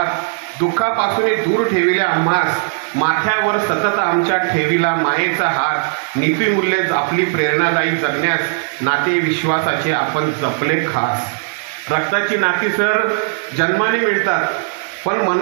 दुःखापासून दूर ठेविल्या आम्हास, माथ्यावर सतत आमच्या ठेविला मायेचा हात, नीतिमूल्ये आपली प्रेरणादायी जगण्यास, नाते विश्वासाचे आपण जपले खास. रक्ताची नाती सर जन्माने मिळतात, पण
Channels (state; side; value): silent; left; digital silence